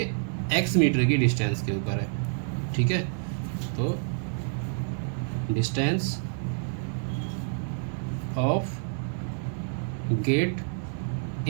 x मीटर की डिस्टेंस के ऊपर है, ठीक है। तो डिस्टेंस ऑफ गेट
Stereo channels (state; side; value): silent; left; digital silence